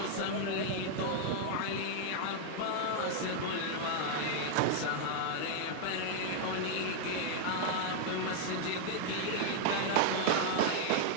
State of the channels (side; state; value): both; different; correlation 0.00